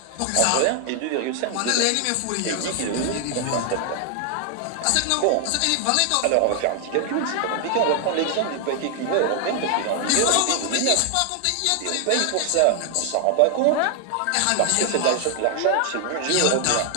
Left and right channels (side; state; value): both; different; correlation 0.00